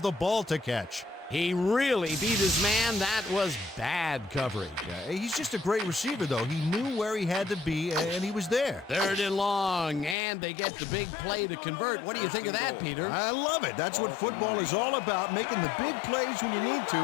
the ball to catch. He really beat his man. That was bad coverage. He's just a great receiver, though. He knew where he had to be, and he was there. Third and long, and they get the big play to convert. What do you think of that, Peter? I love it. That's what football is all about, making the big plays when you need to,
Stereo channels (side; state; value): right; drops out; at 10.2 s